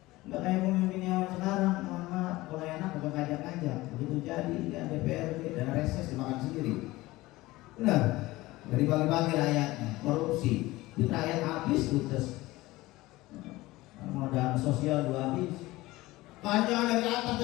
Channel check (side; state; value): right; quieter; 19.1 dB